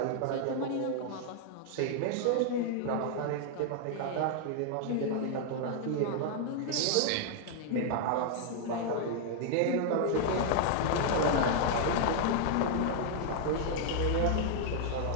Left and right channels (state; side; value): different; both; correlation -0.01